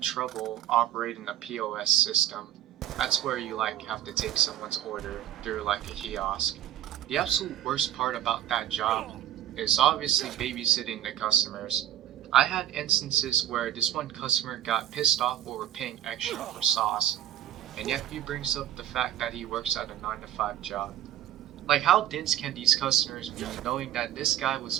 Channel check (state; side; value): quieter; left; 11.9 dB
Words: trouble operating the POS system. That's where you like have to take someone's order through like a kiosk. The absolute worst part about that job is obviously babysitting the customers. I had instances where this one customer got pissed off over paying extra for sauce, and yet he brings up the fact that he works at a 9 to 5 job. Like, how dense can these customers be knowing that this guy was